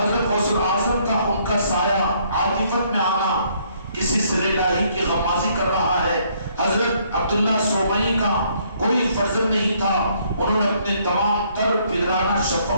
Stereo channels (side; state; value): both; inverted; correlation -0.67